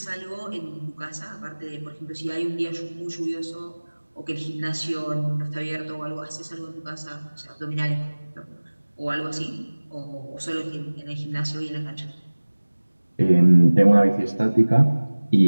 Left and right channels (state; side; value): inverted; both; correlation -1.00